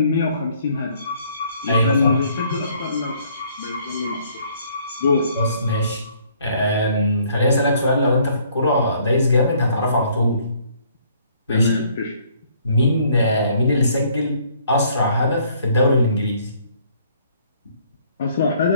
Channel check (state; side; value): inverted; both; correlation -0.62